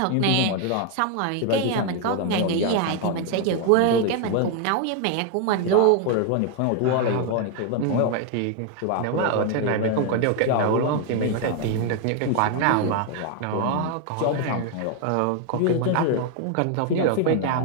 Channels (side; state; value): both; different; correlation 0.00